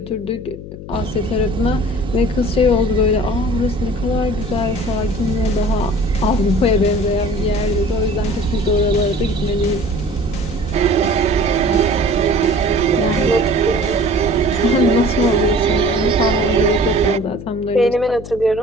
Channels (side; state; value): left; noise; hum, 13 dB below the sound